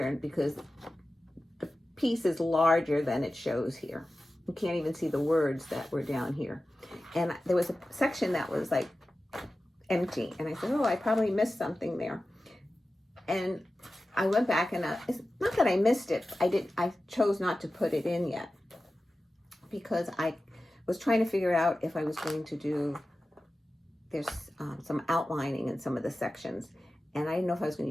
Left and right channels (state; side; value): normal; both; correlation 0.95